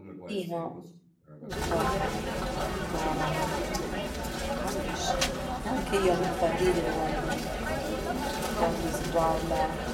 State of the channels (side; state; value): both; identical; correlation 1.00